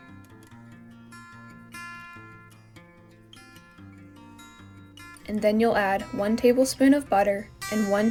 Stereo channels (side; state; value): both; identical; correlation 1.00